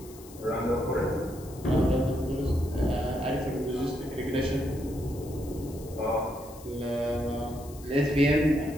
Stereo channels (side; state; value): left; noise; hiss, 20 dB below the sound